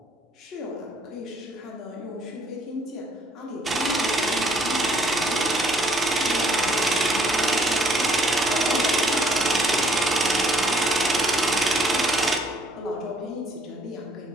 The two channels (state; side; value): normal; both; correlation 0.61